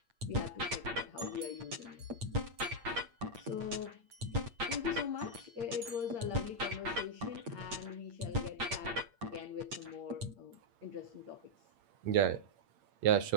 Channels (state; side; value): late; left; 8.7 ms